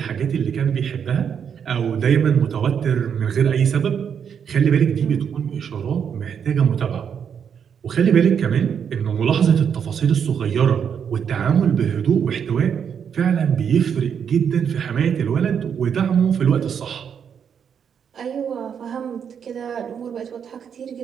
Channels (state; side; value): quieter; left; 7.6 dB